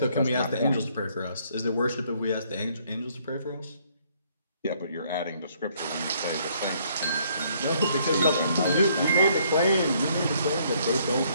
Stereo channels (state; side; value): inverted; both; correlation -0.65